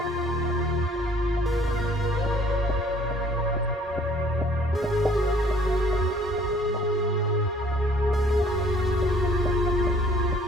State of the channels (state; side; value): normal; both; correlation 0.57